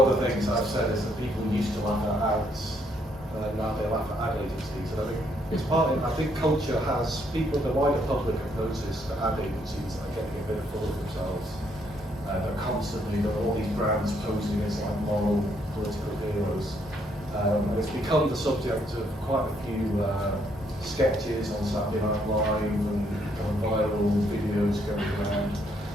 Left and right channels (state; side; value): normal; both; correlation 0.72